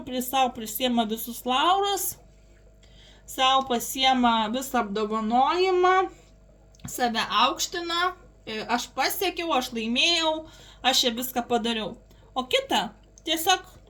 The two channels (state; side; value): identical; both; correlation 1.00